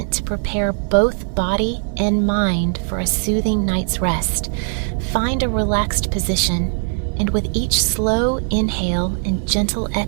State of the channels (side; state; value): left; silent; digital silence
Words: to prepare both body and mind for a soothing night's rest. Find a relaxed position, and with each slow inhale and gentle